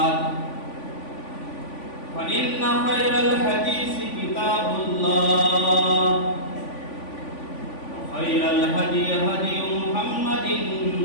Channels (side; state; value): right; late; 3.5 ms